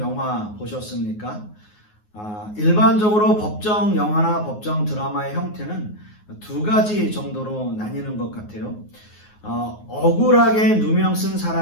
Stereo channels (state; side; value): late; right; 9.5 ms